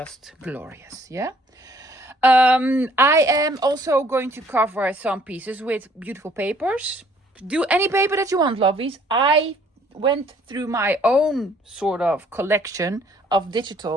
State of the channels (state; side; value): normal; both; correlation 0.61